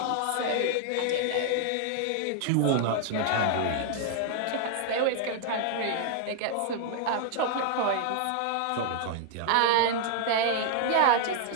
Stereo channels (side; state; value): both; different; correlation 0.00